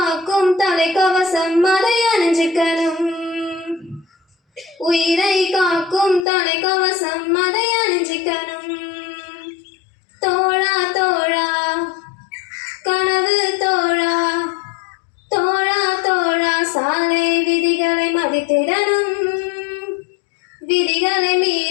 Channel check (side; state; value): right; drops out; at 6.2 s